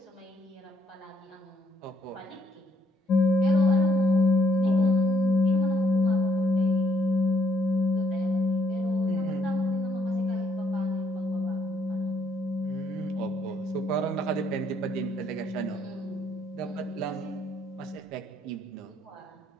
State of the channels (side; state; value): both; normal; correlation 0.70